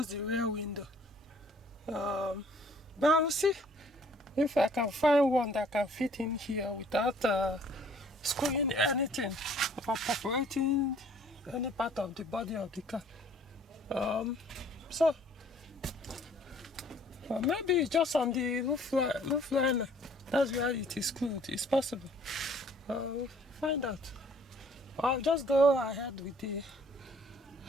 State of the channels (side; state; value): both; normal; correlation 0.57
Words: the rear window. But I will see if I can find one that can fit in here without screwing anything or perforating any part of the body of the car. So maybe just on the roof liner, that's where it is screwed. It's possible. We'll find out. I'll just go ahead with the.